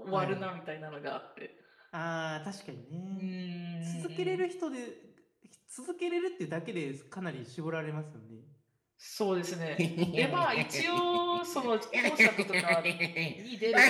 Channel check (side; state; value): both; identical; correlation 1.00